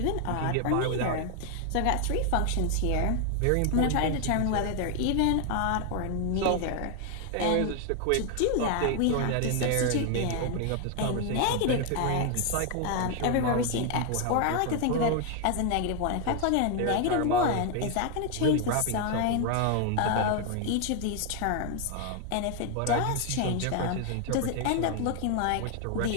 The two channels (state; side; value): different; both; correlation 0.00